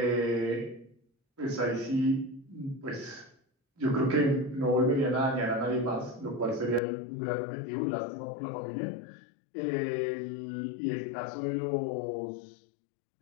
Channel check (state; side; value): drops out; right; at 6.8 s